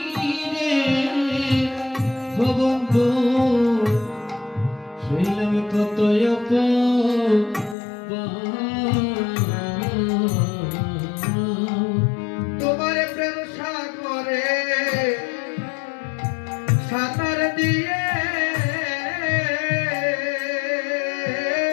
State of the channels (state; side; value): drops out; right; at 7.8 s